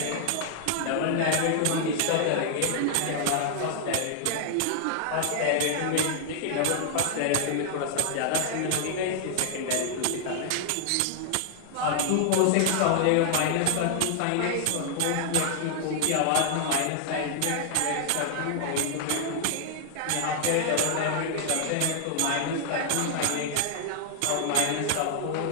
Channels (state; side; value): different; both; correlation 0.00